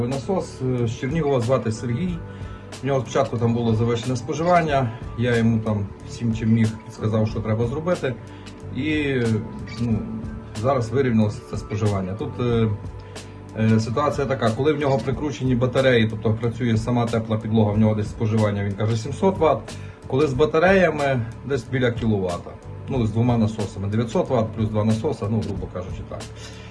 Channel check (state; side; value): identical; both; correlation 1.00